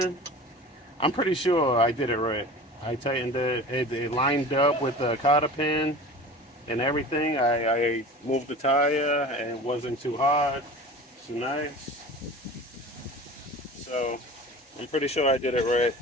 I'm pretty sure I did it right. I tightened it, it lined up with the cotter pin and everything. I moved the tire and it wasn't too hard, too nice. So I'm pretty sure I did it right.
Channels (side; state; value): both; normal; correlation 0.38